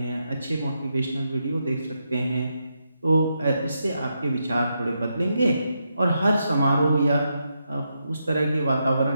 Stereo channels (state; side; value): inverted; both; correlation -0.83